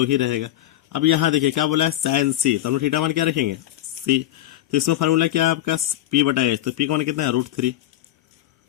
ही रहेगा। अब यहाँ देखिए क्या बोला है साइन सी, तो हम लोग थीटा मान क्या रखेंगे सी, तो इसमें फार्मूला क्या है आपका पी बटा एच, तो पी का मान कितना है √3,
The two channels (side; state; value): right; quieter; 13.9 dB